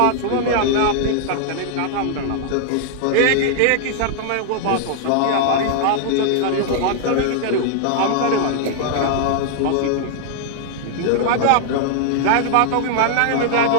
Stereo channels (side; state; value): both; different; correlation -0.01